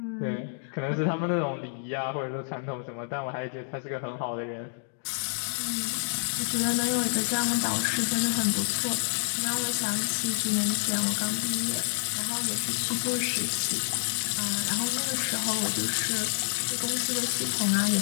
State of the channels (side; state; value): right; silent; digital silence